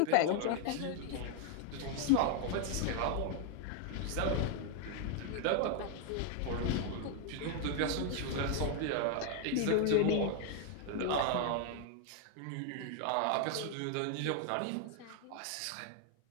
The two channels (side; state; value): both; different; correlation 0.00